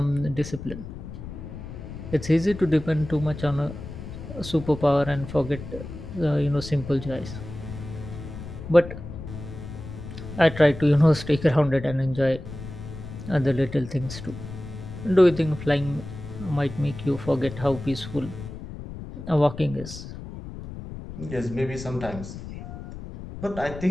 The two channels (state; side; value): noise; left; rumble, 11 dB below the sound